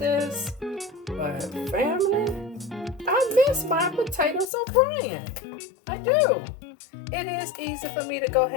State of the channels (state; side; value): drops out; right; at 4.5 s